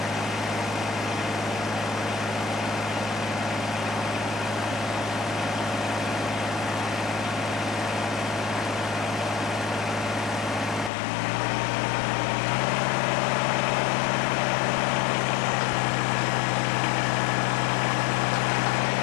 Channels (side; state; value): right; drops out; at 10.9 s